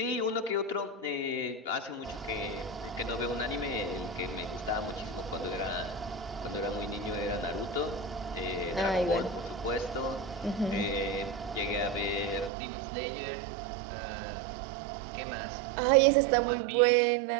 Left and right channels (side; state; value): left; drops out; at 12.5 s